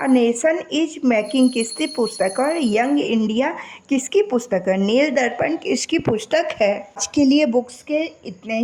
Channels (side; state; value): both; identical; correlation 1.00